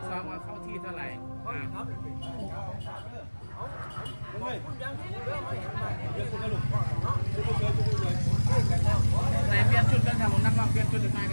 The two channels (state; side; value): inverted; both; correlation -1.00